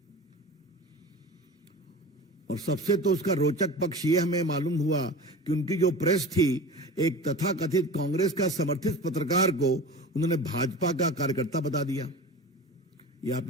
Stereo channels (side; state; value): both; normal; correlation 0.34